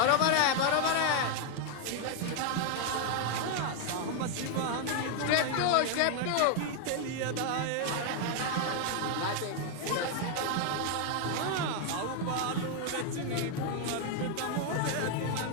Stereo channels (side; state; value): both; different; correlation 0.00